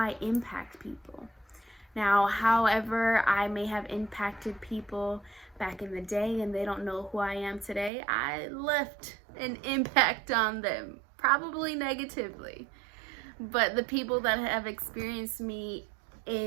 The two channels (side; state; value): left; drops out; at 7.9 s